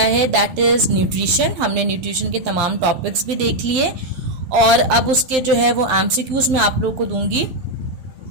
है that is nutrition. हमने nutrition के तमाम topics भी देख लिए और अब उसके जो है वो MCQs मैं आप लोगों को दूंगी.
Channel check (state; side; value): late; left; 12 ms